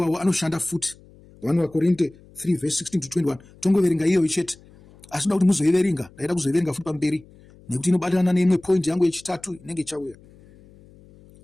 anoshanda futi. 1 Vakorinde 3 verse 16 to 21 tongoverenga iyoyo chete, asi ndoda kuti muzoiverenga, ndaida kuzoiverenga futi pamberi nekuti inobatana neimwe point yangu yechitatu inenge ichauya.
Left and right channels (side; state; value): left; noise; hum, 25 dB below the sound